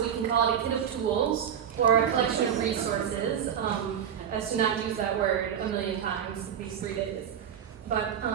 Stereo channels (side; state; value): left; quieter; 8.8 dB